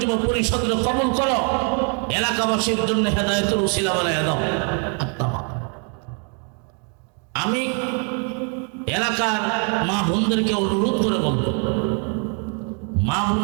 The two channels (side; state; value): left; quieter; 39.5 dB